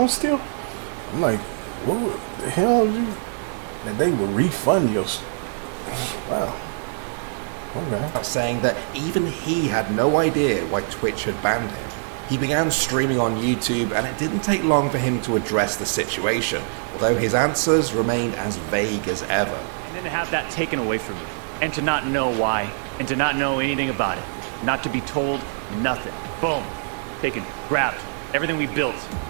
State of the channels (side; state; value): left; silent; digital silence